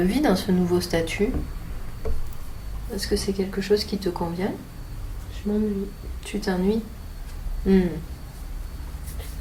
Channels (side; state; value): both; identical; correlation 1.00